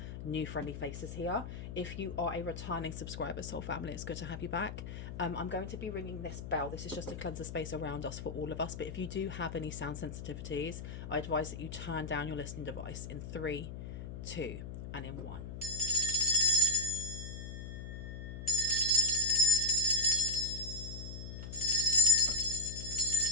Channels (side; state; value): left; noise; hum, 9 dB below the sound